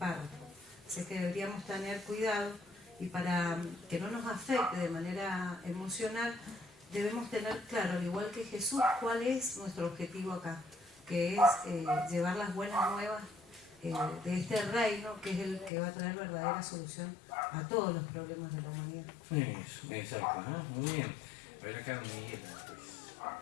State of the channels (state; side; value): drops out; right; at 15.7 s